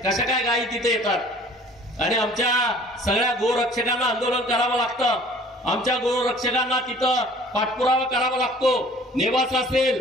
कशा काय गायी तिथे येतात आणि आमच्या सगळ्या गोरक्षकांना आंदोलन करावं लागतं. आमच्या गोरक्षकांना तिथं पाठपुरावा करावा लागतो. नेवासा असेल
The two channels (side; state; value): both; normal; correlation 0.50